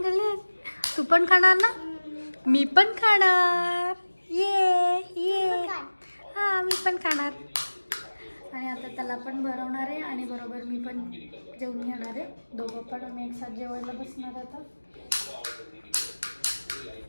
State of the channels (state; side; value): inverted; both; correlation -1.00